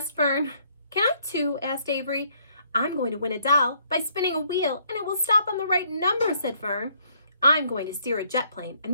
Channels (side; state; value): both; inverted; correlation -0.66